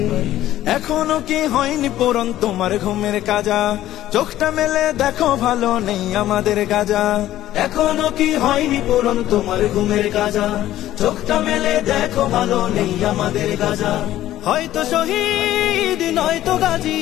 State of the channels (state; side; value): quieter; right; 13.7 dB